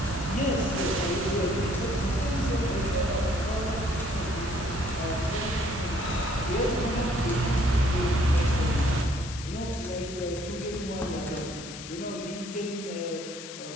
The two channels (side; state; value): left; noise; hiss, 12 dB below the sound